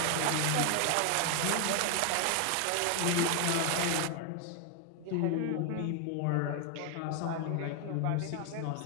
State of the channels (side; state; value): both; different; correlation 0.00